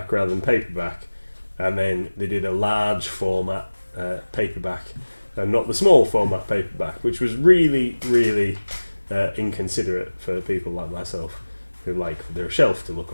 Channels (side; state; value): both; inverted; correlation -1.00